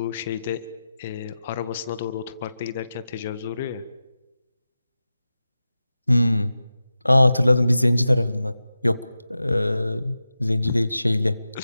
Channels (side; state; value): both; inverted; correlation -0.93